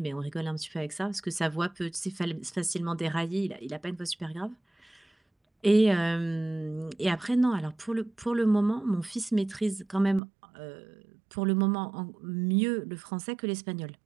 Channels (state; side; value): drops out; left; at 10.2 s